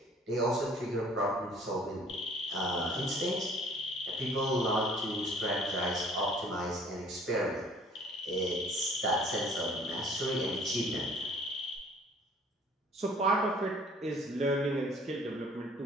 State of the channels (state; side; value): normal; both; correlation 0.54